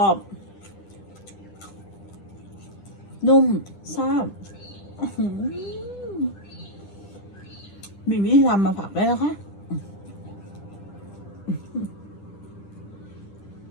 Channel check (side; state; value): right; late; 10 ms